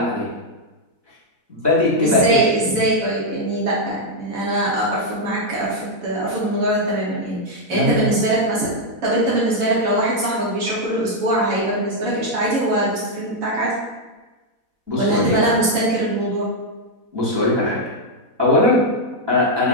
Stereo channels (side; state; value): left; late; 4.0 ms